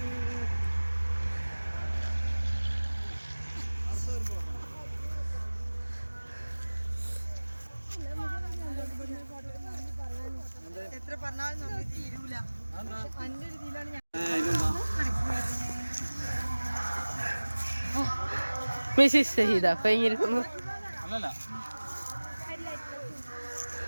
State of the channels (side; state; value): both; inverted; correlation -1.00